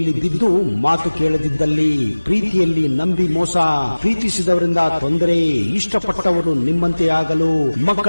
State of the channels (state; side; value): inverted; both; correlation -1.00